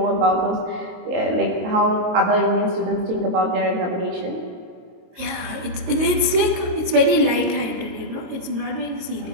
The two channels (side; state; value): left; late; 22 ms